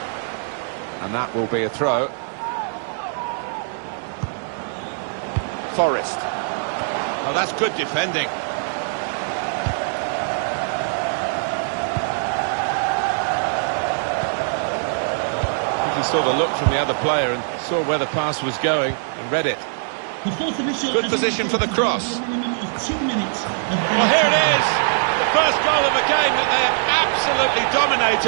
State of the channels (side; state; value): left; silent; 61 dB below the other